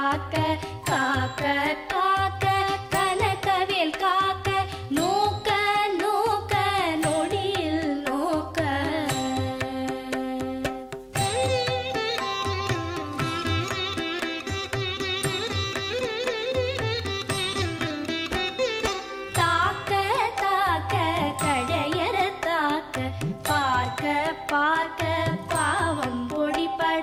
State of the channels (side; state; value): both; identical; correlation 1.00